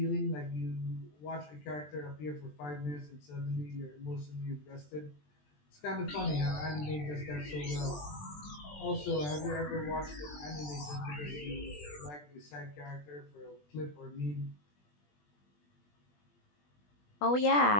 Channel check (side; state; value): right; late; 20 ms